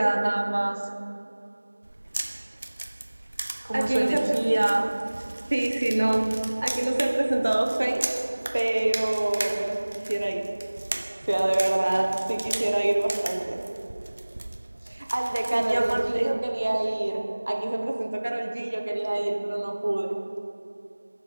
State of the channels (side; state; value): both; inverted; correlation -1.00